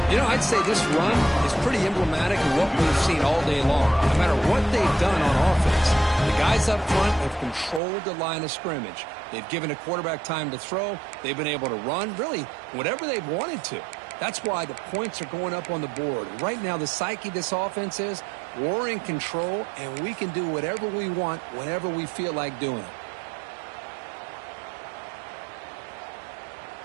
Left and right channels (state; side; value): drops out; left; at 7.8 s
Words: You know, I'd say this run is pretty emblematic of what we've seen all day long. No matter what they've done on offense, the guys up front have controlled the line of scrimmage. They've given a quarterback time to throw. They've been able to run, really, whatever they've wanted to. That's why the points are going up on the board. Right now, the psyche of this offense is we're in control, and we can do whatever we want whenever we feel like doing it.